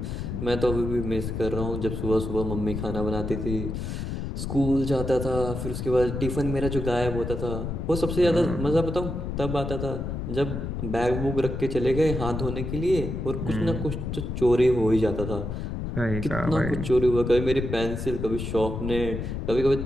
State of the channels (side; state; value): left; noise; rumble, 4 dB below the sound